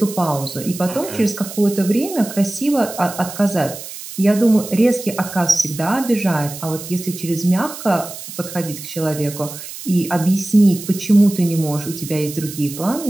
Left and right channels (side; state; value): right; noise; hiss, 12 dB below the sound